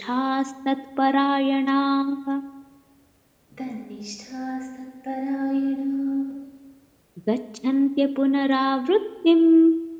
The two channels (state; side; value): identical; both; correlation 1.00